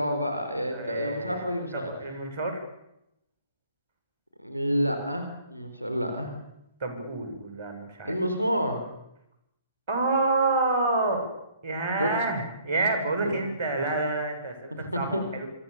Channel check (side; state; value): both; inverted; correlation -0.61